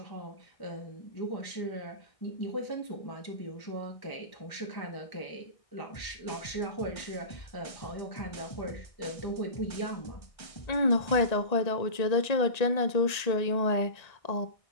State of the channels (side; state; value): right; late; 1.8 ms